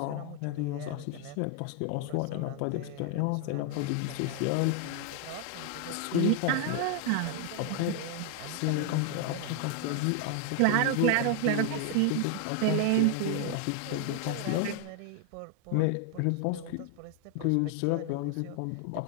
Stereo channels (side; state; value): both; different; correlation 0.00